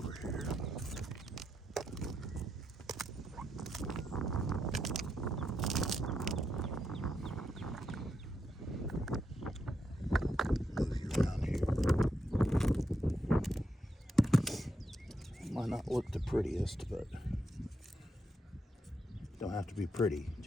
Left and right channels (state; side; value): normal; both; correlation 0.82